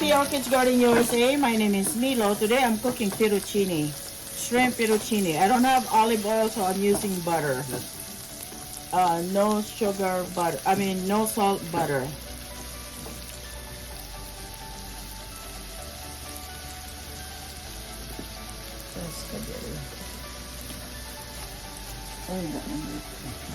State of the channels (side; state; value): left; noise; rumble, 27 dB below the sound